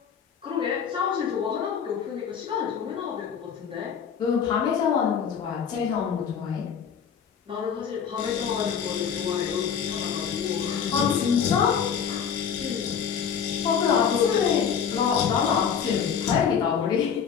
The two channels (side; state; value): right; quieter; 7.4 dB